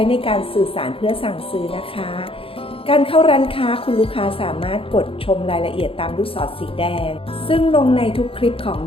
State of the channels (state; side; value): late; right; 0.27 ms